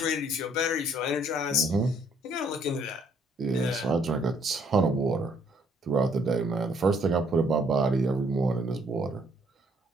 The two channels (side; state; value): both; normal; correlation 0.66